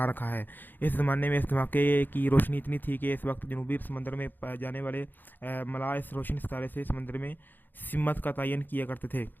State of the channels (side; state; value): right; late; 0.090 ms